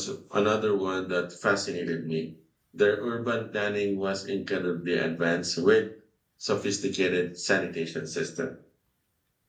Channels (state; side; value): identical; both; correlation 1.00